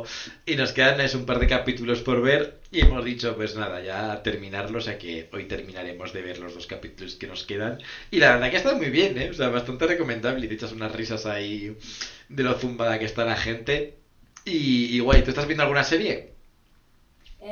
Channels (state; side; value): identical; both; correlation 1.00